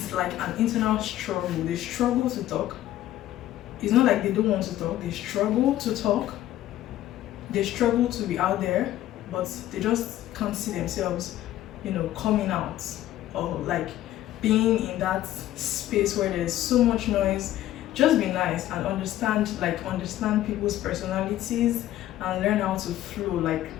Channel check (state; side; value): quieter; right; 13.7 dB